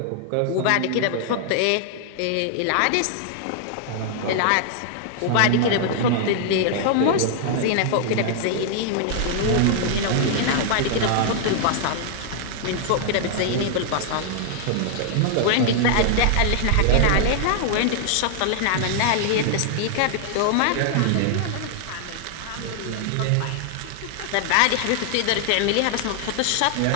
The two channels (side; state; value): both; different; correlation 0.00